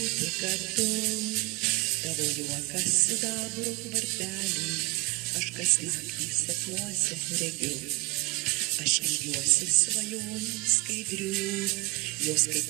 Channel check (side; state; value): left; quieter; 25.8 dB